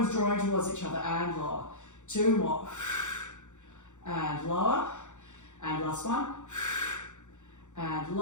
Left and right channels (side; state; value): right; late; 0.85 ms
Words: drawing towards each other and lower. Two more. And lower. And last one. And